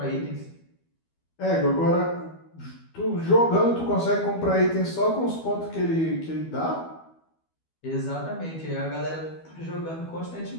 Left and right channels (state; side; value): late; right; 12 ms